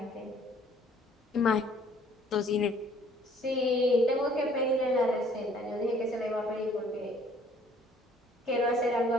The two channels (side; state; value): both; normal; correlation 0.58